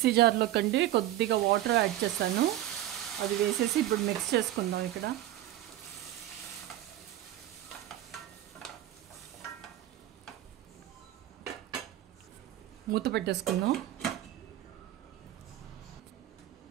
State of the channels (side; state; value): left; quieter; 13.7 dB